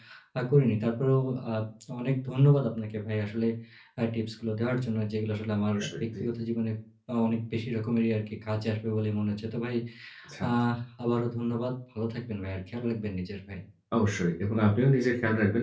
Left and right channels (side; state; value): both; identical; correlation 1.00